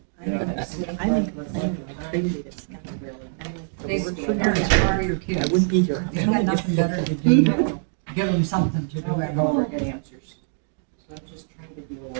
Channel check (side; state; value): left; silent; digital silence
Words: I'm in complaining, I traded it at Scott. I'm They like, work the for word parents, for part of your I kids. wouldn't be here. You got nothing better to do, give them something to do at home. Get answers. So I'm just trying to deal